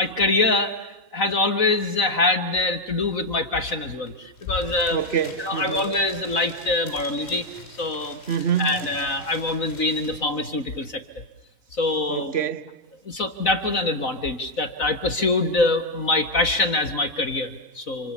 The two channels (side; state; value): right; late; 4.0 ms